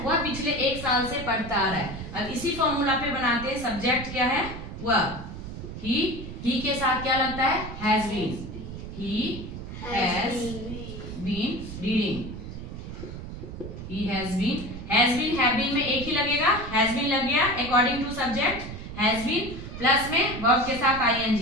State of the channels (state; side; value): noise; right; rumble, 9 dB below the sound